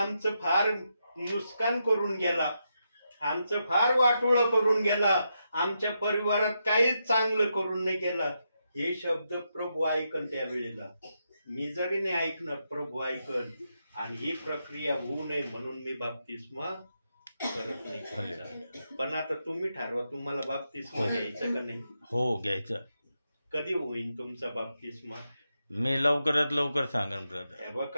फार नुकसान करून गेला, आमचं फार वाटोळं करून गेला, आमच्या परिवारात काहीच चांगलं करून नाही गेला. हे शब्द प्रभू ऐकन त्यावेळेला. मी जरी नाही ऐकणार, प्रभू ऐकन. आणि ही प्रक्रिया होऊ नये म्हणून मी बाप्तिस्मा करत नाही तुमचा. पण आता तुम्ही ठरवा तुम्हाला बाप्तिस्मा घ्यायचं का नाही. हो घ्यायचं. कधी होईल तुमचा बाप्तिस्मा. मी लवकरात लवकर सांगेन ब्रदर. हे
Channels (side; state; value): both; inverted; correlation -0.84